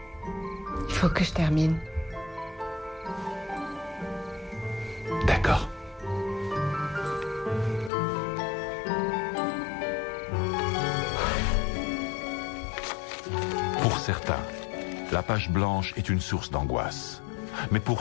Il faut que je termine. D'accord. Pour certains, la page blanche est une source d'angoisse. Mais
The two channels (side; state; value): right; drops out; at 7.9 s